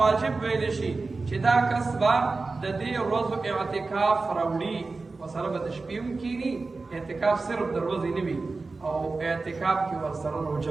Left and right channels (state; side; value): quieter; left; 3.8 dB